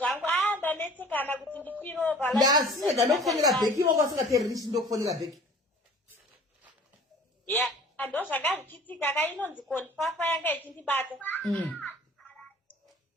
ndanetsekana kuti ndikwiropa ndasiyega ndokufonera bheki wako asingatererishi ndokufonera bheki ndo zvanga zvichiitika kainonzi konfafa yanga ichindibata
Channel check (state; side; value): normal; both; correlation 0.47